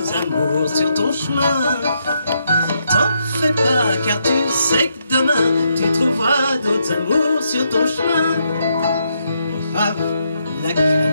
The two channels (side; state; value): both; inverted; correlation -0.78